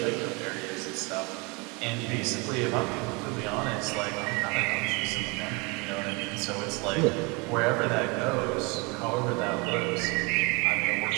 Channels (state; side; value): quieter; left; 28.8 dB